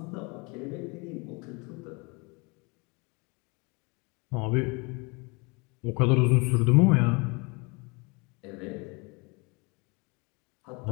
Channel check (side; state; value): right; quieter; 29.4 dB